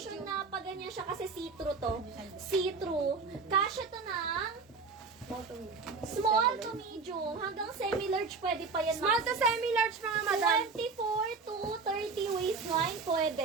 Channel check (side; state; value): left; quieter; 4.5 dB